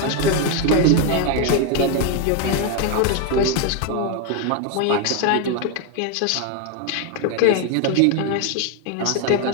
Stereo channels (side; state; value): both; different; correlation 0.01